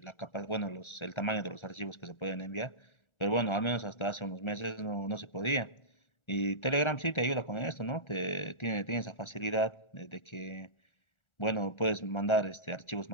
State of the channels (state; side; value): late; right; 1.3 ms